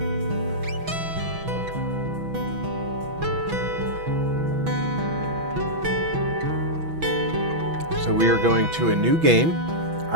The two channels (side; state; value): left; late; 6.1 ms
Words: So we are going to a new game.